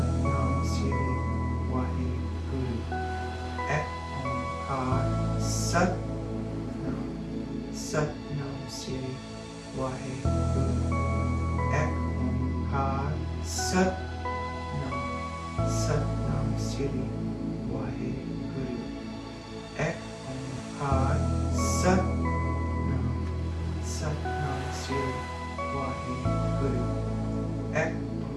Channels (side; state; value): both; identical; correlation 1.00